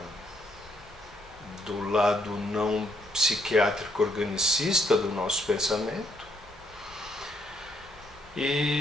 do lado não psiquiátrico organicista do nosso pensamento.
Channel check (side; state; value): both; normal; correlation 0.72